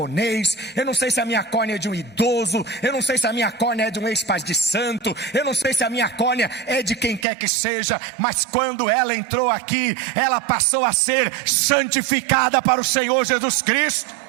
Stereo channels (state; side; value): drops out; left; at 7.2 s